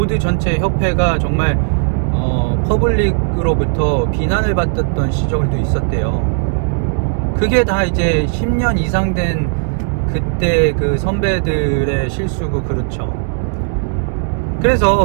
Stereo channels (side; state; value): left; silent; digital silence